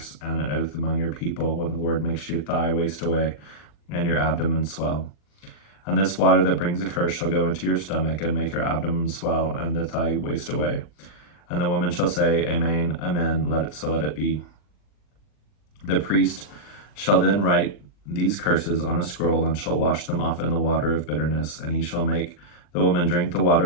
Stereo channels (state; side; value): late; right; 40 ms